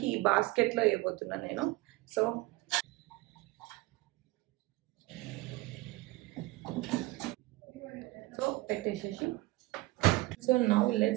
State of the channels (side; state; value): left; quieter; 20.2 dB